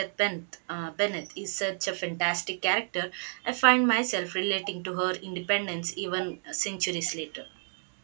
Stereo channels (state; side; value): silent; left; 58 dB below the other